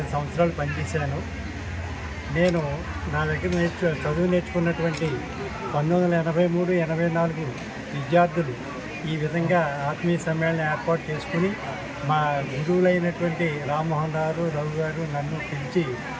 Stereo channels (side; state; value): both; identical; correlation 1.00